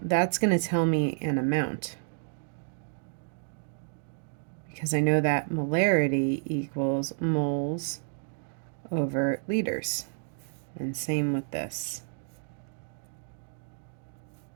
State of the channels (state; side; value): silent; left; digital silence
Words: that's going to tell me an amount, because I know that molarity equals moles over liters. And same with this.